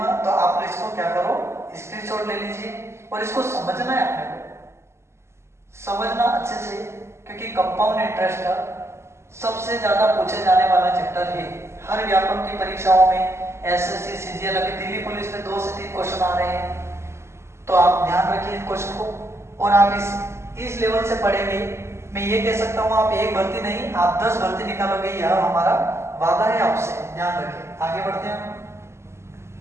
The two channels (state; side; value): late; left; 0.13 ms